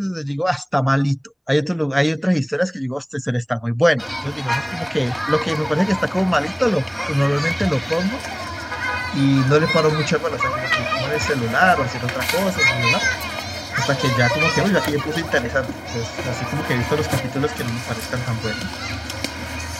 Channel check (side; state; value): both; identical; correlation 1.00